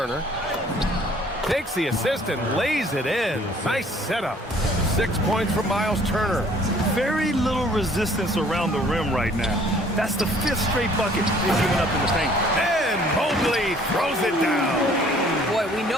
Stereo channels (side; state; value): both; normal; correlation 0.57